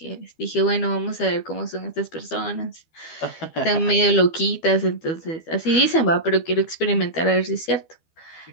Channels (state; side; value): late; right; 12 ms